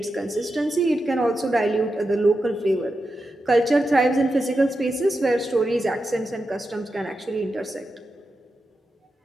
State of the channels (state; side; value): normal; both; correlation 0.89